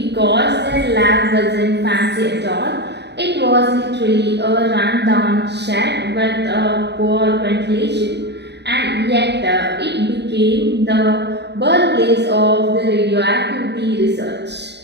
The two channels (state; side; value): late; left; 0.50 ms